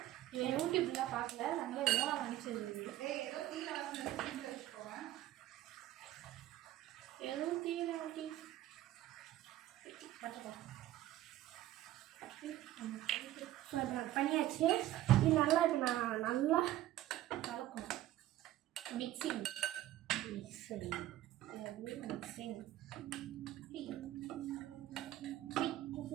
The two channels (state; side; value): quieter; left; 14.3 dB